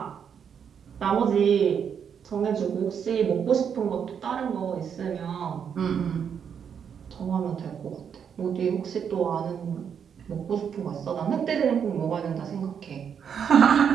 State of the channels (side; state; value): left; quieter; 7.6 dB